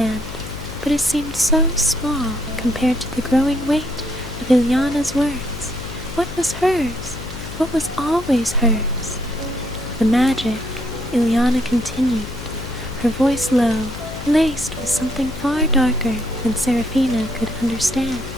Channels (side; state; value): left; noise; hum, 11 dB below the sound